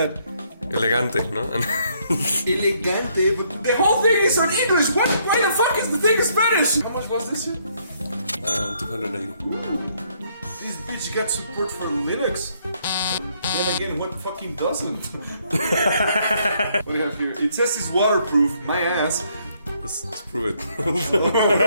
Elegante, ¿no? ELE-GATE, but the whole thing is on English! Why the fuck is the thing in Spanish? How much was this? 280. Ooh. This bitch got support for Linux. Then again, what fucking doesn't? What do you have here? It says it's waterproof, my ass. Let's prove it. I don't know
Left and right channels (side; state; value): both; inverted; correlation -0.70